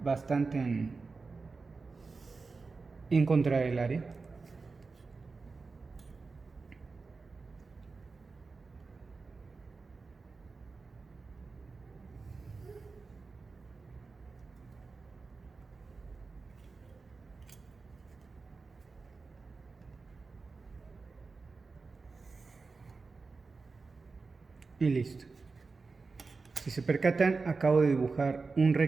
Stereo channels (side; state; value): left; quieter; 4.2 dB